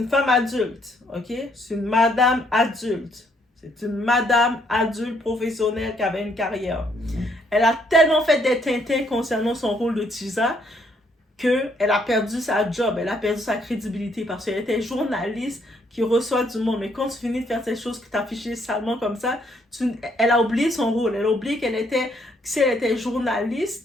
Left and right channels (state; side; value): normal; both; correlation 0.70